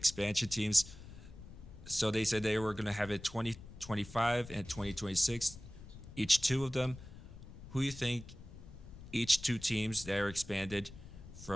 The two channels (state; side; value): noise; left; rumble, 15 dB below the sound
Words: teams. So they said they were going to have it 2025 and 2026, each two of them. Who do you think each two teams that are expanded